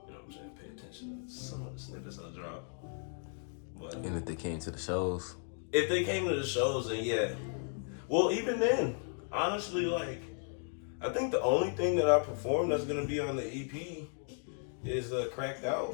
know what I'm saying, pay attention to some of the snippets I drop. But And if they came to the shows? If they came to the shows, then yeah. Well, even then, honestly, like, I think the only thing that I perform that's gonna be on the EP is Cracked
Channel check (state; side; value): silent; right; 54 dB below the other